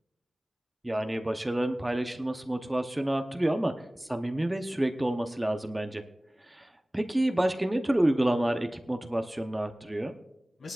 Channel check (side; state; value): both; normal; correlation 0.98